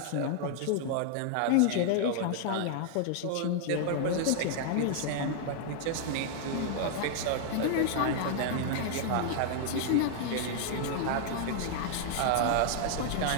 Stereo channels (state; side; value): different; both; correlation 0.00